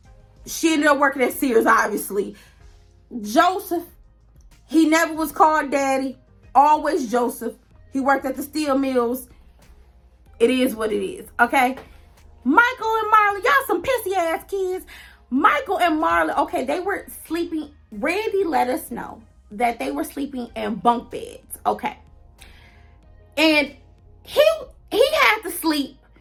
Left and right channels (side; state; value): both; identical; correlation 1.00